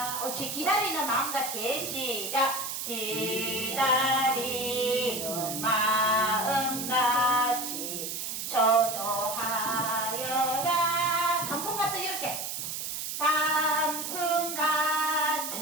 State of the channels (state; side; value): noise; right; hiss, 4 dB below the sound